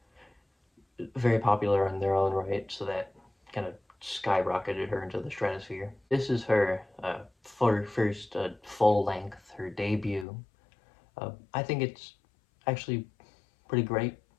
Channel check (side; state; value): right; drops out; at 10.2 s